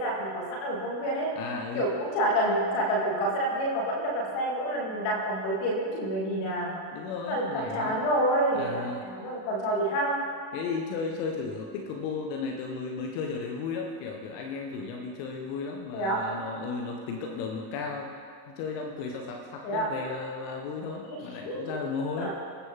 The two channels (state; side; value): late; right; 36 ms